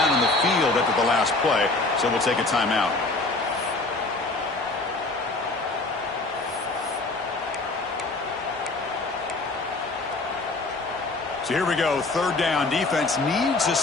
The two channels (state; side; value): quieter; right; 3.3 dB